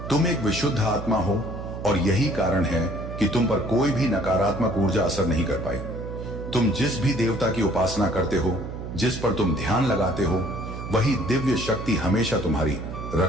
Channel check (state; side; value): noise; right; hum, 8 dB below the sound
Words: तुम एक विशुद्ध आत्मा हो और यही कारण है कि तुम पर कोई भी नकारात्मक ऊर्जा असर नहीं कर पाई। तुम जिस भी देवता की उपासना करते हो, जिस पर तुम ध्यान लगाते हो, वही दिव्य शक्ति हमेशा तुम्हारी